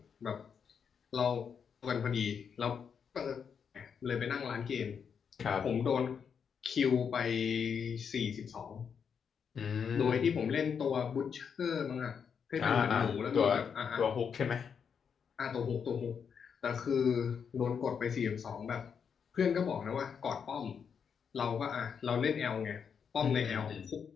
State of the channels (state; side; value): quieter; right; 6.9 dB